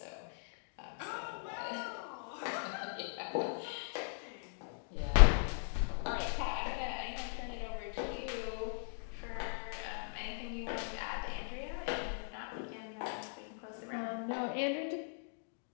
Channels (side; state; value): right; silent; digital silence